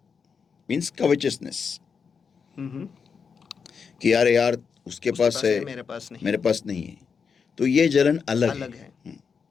मीन्स कवचसनेस, कि यार उसके पास है, मेरे पास नहीं है, तो ये जलन अलग है।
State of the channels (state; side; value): quieter; right; 6.0 dB